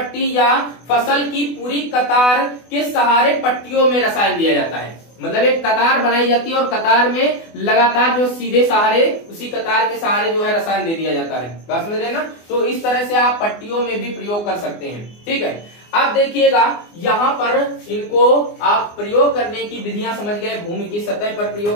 या फसल की पूरी कतार के सहारे पट्टियों में रसायन दिया जाता है। मतलब एक कतार बनाई जाती है और कतार में लगातार जो सीधे सहारे उसी कतार के सहारे जो है रसायन दे दिया जाता है। बस समझ रहे ना, तो इस तरह से आप पट्टियों में भी प्रयोग कर सकते हैं, ठीक है। अब देखिएगा यहाँ पर इनको आप प्रयोग करने की विधियां समझ गए। भूमि की सतह पर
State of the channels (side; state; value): right; late; 24 ms